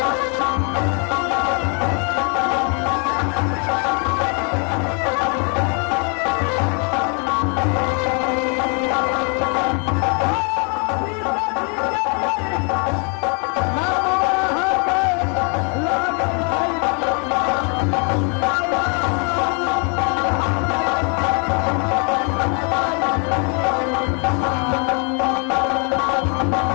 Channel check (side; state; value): right; quieter; 37.5 dB